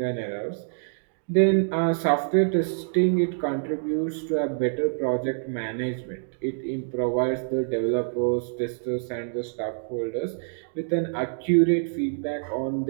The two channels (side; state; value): left; silent; digital silence